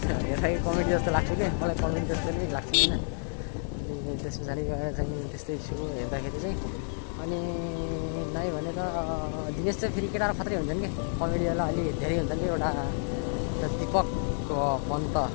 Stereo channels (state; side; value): silent; right; digital silence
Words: हेर्दाखेरि कमेडी जस्तो लाग्छ कि, मलाई कमेडी जस्तो नै लाग्छ होइन। अनि त्यस पछाडि गएर चाहिँ त्यस्तै छु हेर्दाखेरि चाहिँ। अनि नाइ भने त दिनेश चाहिँ फेरि केटाहरू खत्रै हुन्छन् कि, कमेडीवाला अलि धेरै हुन्छन् कि। एउटा दिपक पन्त